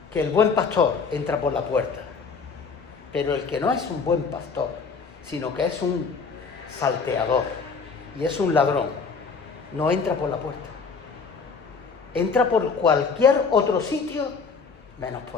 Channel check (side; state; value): right; quieter; 5.1 dB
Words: que el buen pastor entra por la puerta, pero el que no es un buen pastor, sino que es un salteador y es un ladrón, no entra por la puerta. Entra por cualquier otro sitio menos